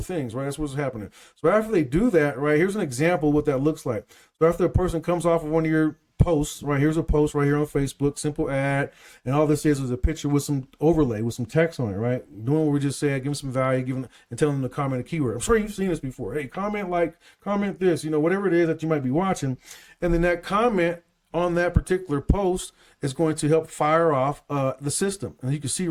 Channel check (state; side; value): identical; both; correlation 1.00